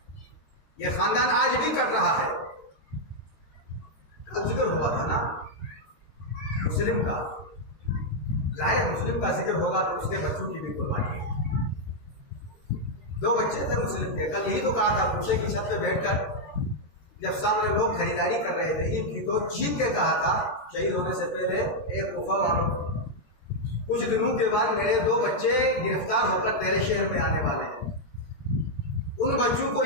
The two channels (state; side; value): late; right; 13 ms